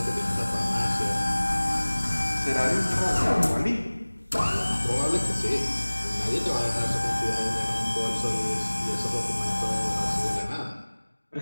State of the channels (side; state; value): both; inverted; correlation -1.00